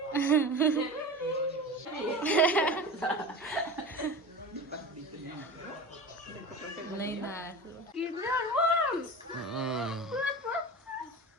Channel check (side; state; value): both; normal; correlation 0.32